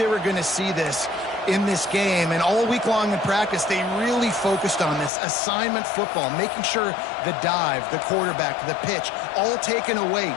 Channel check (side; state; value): right; drops out; at 5.1 s